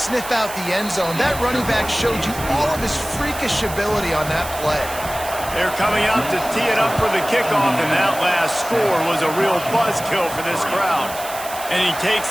sniff out the end zone. That running back showed you all of his freakish ability on that play. They're coming out to tee it up for the kickoff, and that last score was a real buzzkill for this crowd. And he takes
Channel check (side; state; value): right; noise; hiss, 11 dB below the sound